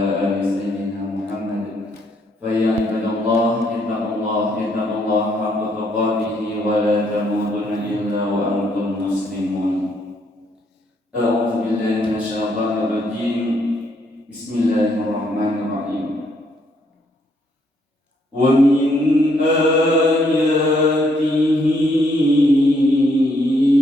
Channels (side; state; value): both; normal; correlation 0.71